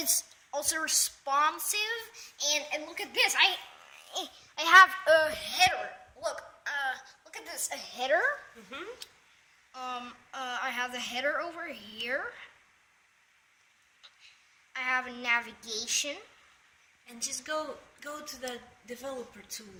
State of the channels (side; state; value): both; identical; correlation 1.00